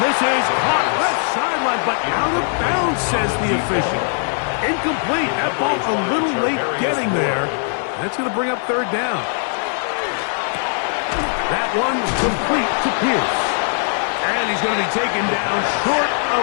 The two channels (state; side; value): silent; right; 66 dB below the other